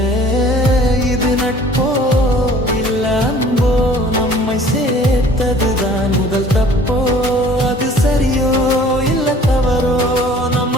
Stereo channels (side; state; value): both; normal; correlation 0.51